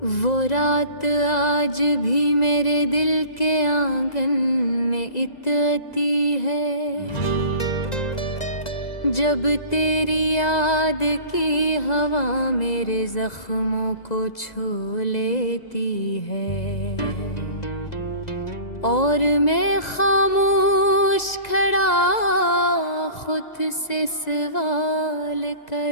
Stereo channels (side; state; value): right; late; 1.9 ms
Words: वो रात आज भी मेरे दिल के आंगन में इतती है, जब तेरी याद की हवा मेरे जख्मों को छू लेती है। और मैं खामोश खड़ा खुद से सवाल